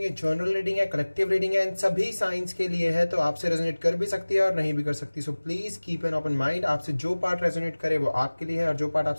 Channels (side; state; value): both; inverted; correlation -1.00